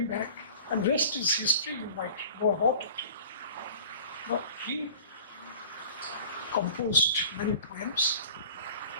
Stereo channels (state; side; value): inverted; both; correlation -0.43